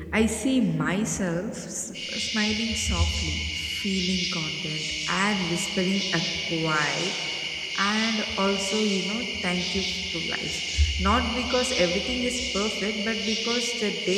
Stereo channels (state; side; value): identical; both; correlation 1.00